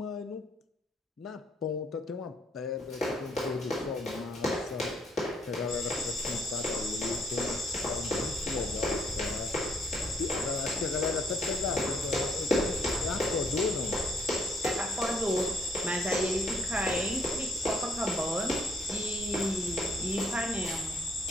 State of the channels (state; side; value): normal; both; correlation 0.68